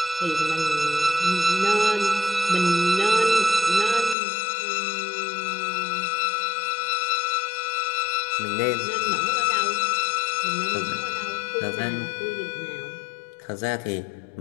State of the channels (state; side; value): drops out; right; at 4.2 s